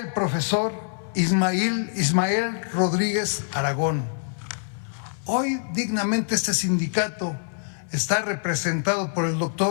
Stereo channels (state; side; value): silent; right; 62 dB below the other